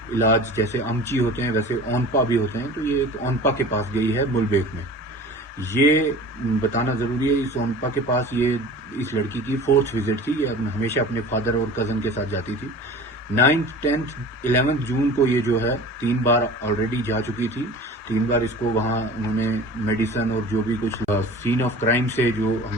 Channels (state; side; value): normal; both; correlation 0.40